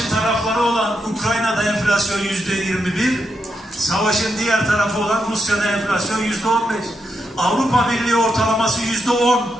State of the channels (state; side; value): normal; both; correlation 0.83